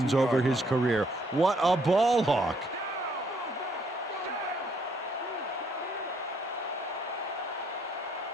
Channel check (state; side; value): normal; both; correlation 0.69